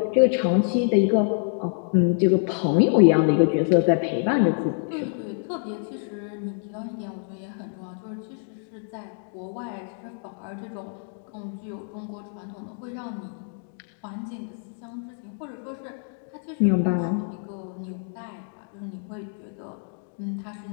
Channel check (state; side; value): silent; right; 61 dB below the other